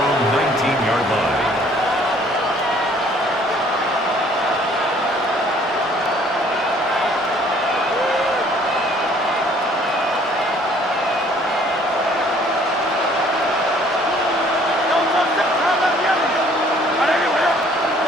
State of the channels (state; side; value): normal; both; correlation 0.59